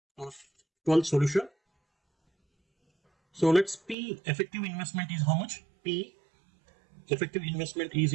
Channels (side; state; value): left; drops out; at 4.0 s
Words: 12th solution. So let's P effective investment is how much? P effective investment is